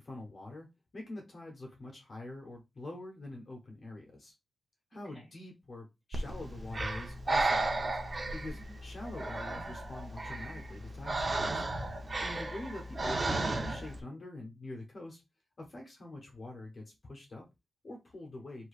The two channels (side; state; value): both; normal; correlation 0.91